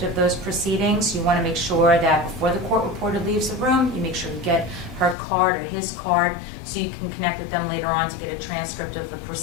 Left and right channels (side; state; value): right; drops out; at 5.2 s